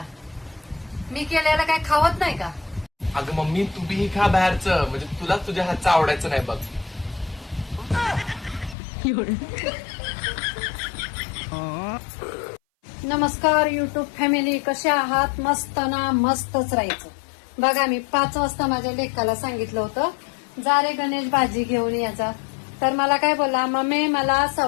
मी केलेलं काय खावत नाही का? अगं मम्मी तू बी खा बाहेरचं, म्हणजे तुला तुझ्या हातचं आवडायचं नाही बघ. नमस्कार युट्यूब फॅमिली, कसे आहात? मस्त ना? मस्तच राहायचं. बघा मी 5 वाजता माझ्या लेकाला सांगितलं होतं जा रे गणेश भाजी घेऊन यायचा. तर मला काय बोलला, मम्मी मला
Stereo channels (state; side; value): drops out; right; at 8.8 s